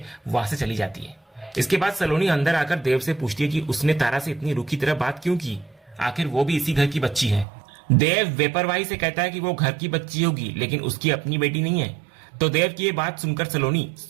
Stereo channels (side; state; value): left; drops out; at 7.5 s